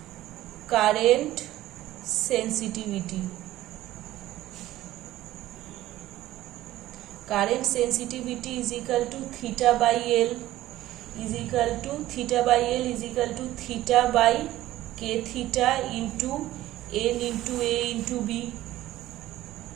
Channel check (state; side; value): quieter; left; 15.0 dB